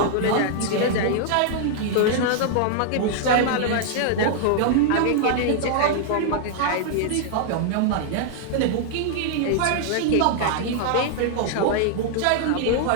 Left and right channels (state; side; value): different; both; correlation -0.01